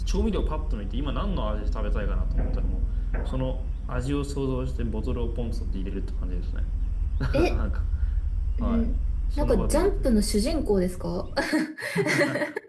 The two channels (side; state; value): both; identical; correlation 1.00